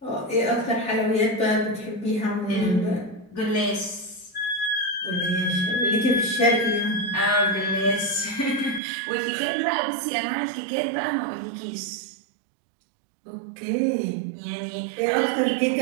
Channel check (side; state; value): left; drops out; at 8.8 s